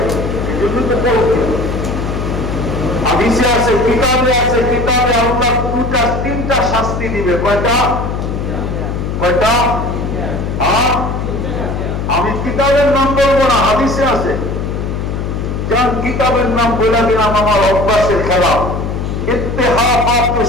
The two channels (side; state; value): left; noise; hum, 3 dB below the sound